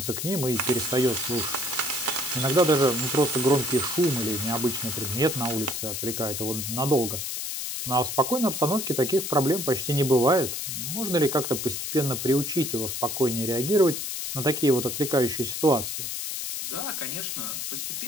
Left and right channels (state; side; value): noise; left; hiss, 4 dB below the sound